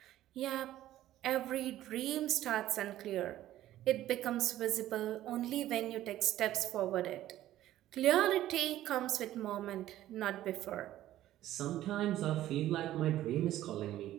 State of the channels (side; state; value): left; quieter; 13.8 dB